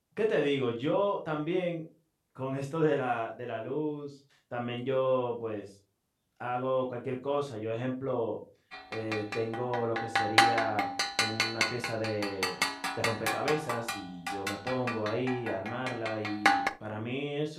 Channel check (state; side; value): identical; both; correlation 1.00